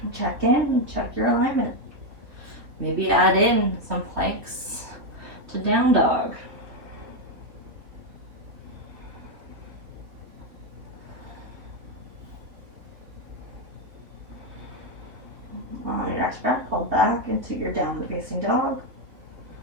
Check in, check your alignment. Maybe add in some planks to down dog. On your next breath, hold back into your downward facing dog.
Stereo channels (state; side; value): late; left; 3.4 ms